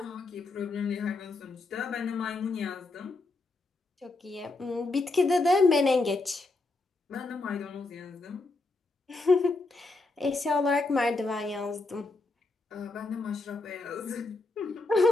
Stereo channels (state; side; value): quieter; right; 3.3 dB